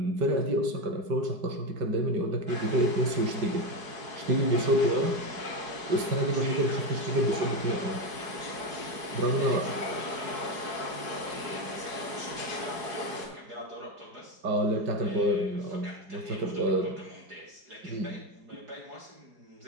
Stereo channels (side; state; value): left; late; 4.8 ms